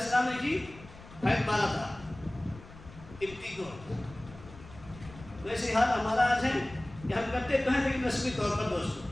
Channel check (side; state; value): left; noise; rumble, 18 dB below the sound